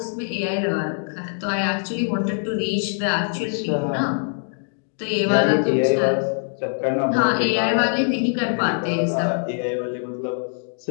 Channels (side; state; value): right; silent; 61 dB below the other